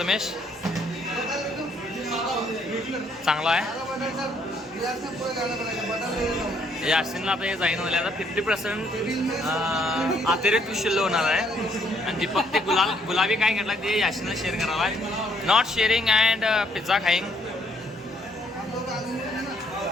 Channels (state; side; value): normal; both; correlation 0.69